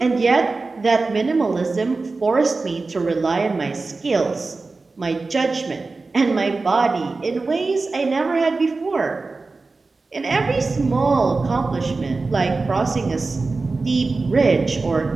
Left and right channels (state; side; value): quieter; left; 3.8 dB